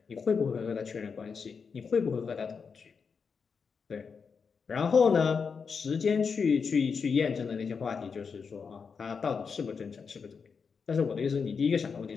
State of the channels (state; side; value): quieter; right; 5.7 dB